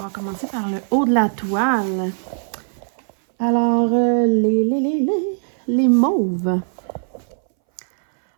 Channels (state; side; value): silent; left; 63 dB below the other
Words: va commencer par le haut de la toile. Alors, les mauves.